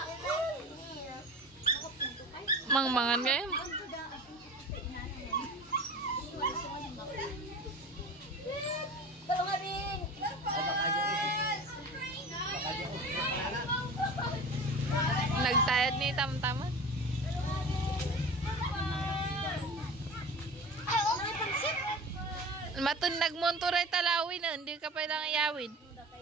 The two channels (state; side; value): normal; both; correlation 0.36